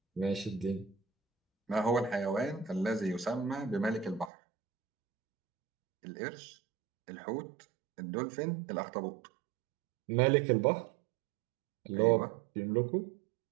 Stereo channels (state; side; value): drops out; left; at 4.3 s